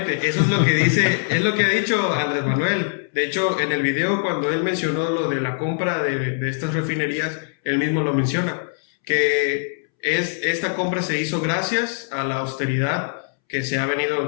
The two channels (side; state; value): right; silent; 64 dB below the other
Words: eso es lo que dice, es lo que ha dicho Andrés Manuel. De hecho, en el video cuando él mencionó lo de la compra de estas refinerías, él mismo lo menciona, que esta compra se hizo gracias a la austeridad que se ha